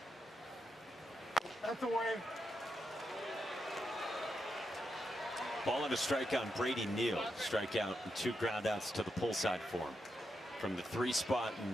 That's away. Ball and a strikeout on Brady Neal. Strikeout and 2 groundouts to the pull side for him from the 3 spot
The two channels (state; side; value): normal; both; correlation 0.84